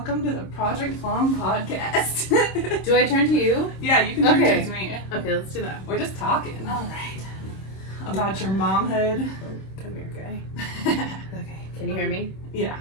to the Project Plum Podcast. Do I turn to you? Yeah, you can turn to me. Okay, let's do that. We're just talking. All right. About your momhood. Come here, guy. Okay. Can you hear me? Yeah.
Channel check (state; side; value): late; right; 26 ms